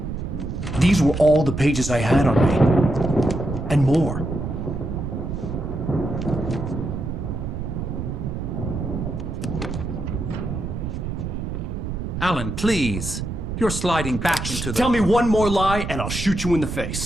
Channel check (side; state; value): right; noise; rumble, 4 dB below the sound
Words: These were all the pages I had on me. And more. Alan, please. You're sliding back into the... Tell me one more lie and I'll shoot you in the